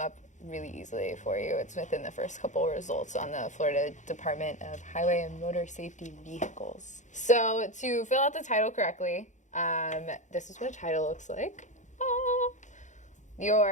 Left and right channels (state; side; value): late; right; 0.35 ms